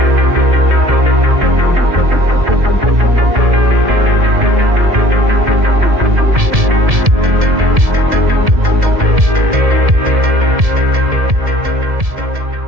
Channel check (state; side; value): late; left; 1.7 ms